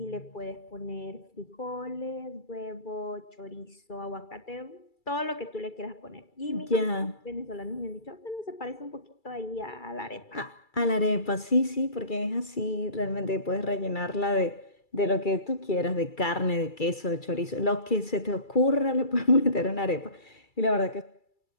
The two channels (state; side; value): late; right; 2.3 ms